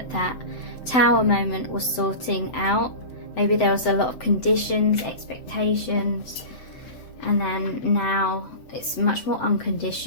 Tower moment was sorting out. Maybe there was a lot of conditions, expectations, and then now it's much more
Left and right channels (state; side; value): late; right; 8.2 ms